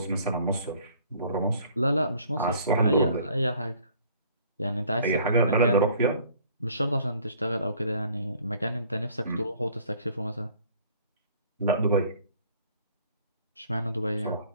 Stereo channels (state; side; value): inverted; both; correlation -0.56